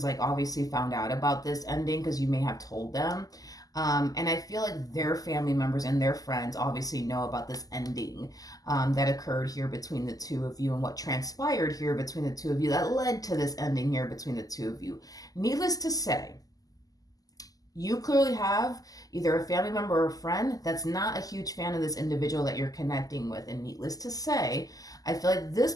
like, obviously found out about this ending because you may have told them. And I feel like their family members and their friends obviously know about this ending, that occurred here between the two of you and what transpired here between the two of you that led to this ending here between the two of you. Needless to say, you clearly have either a family member or a friend that's not a huge fan of this individual that you're connecting with. And needless to say, I feel like this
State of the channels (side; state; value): right; late; 0.17 ms